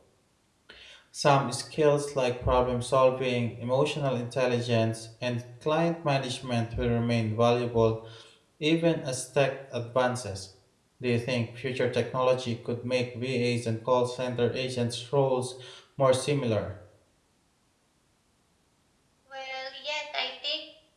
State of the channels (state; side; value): identical; both; correlation 1.00